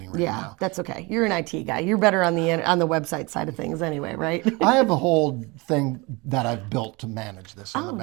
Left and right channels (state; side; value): quieter; left; 26.0 dB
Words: right now. Yeah, that's okay. You're an IT guy. You're better on the website side of things anyway, right? I have a whole thing that I've built to manage this on the